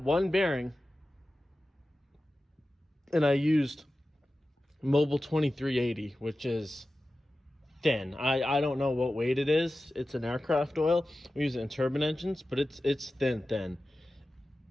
bearing, and I used Mobile 2380, which is thin. I don't know what weight it is. It's an aircraft oil. We use it in turbine engines, but it's thin.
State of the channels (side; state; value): both; normal; correlation 0.94